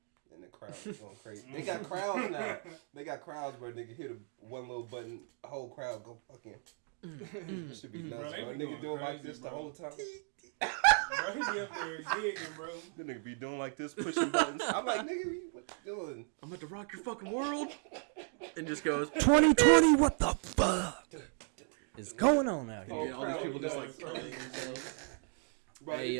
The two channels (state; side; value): quieter; left; 39.3 dB